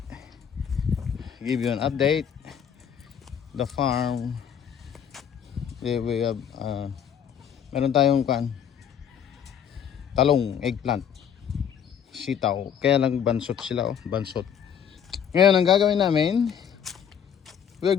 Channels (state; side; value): quieter; right; 8.3 dB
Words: give you an update. The farm, we have meron tayong talong, eggplant, sitaw, kaya lang bansot sila, bansot. Ngayon ang gagawin namin, we're